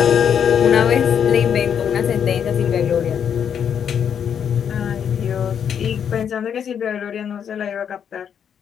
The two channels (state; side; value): quieter; right; 8.1 dB